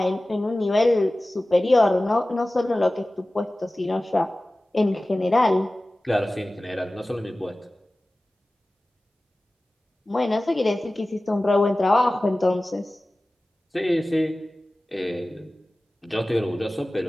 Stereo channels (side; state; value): both; normal; correlation 0.97